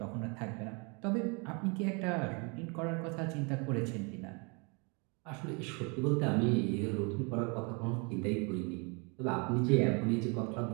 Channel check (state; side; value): quieter; left; 32.3 dB